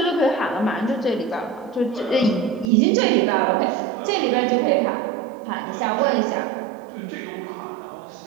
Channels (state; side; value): drops out; left; at 2.7 s